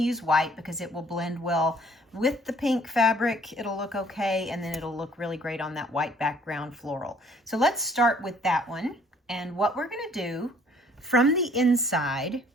use white because it will blend well with the pink fabric. It'll look okay, and then it'll look really great on that white background floral. So let's start with that one. And what we're going to do, from the inside,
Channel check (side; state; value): both; normal; correlation 0.59